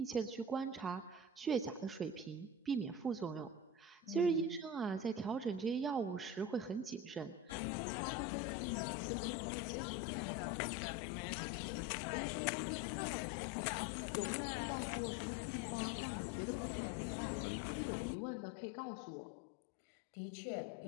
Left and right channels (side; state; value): right; drops out; at 7.6 s